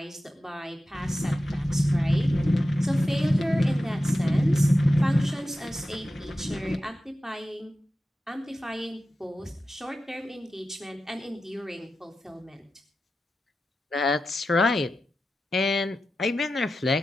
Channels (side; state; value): both; normal; correlation 0.92